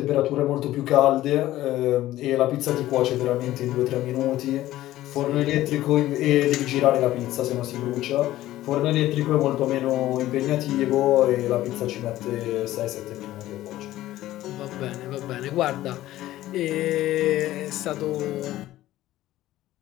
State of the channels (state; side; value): quieter; right; 15.0 dB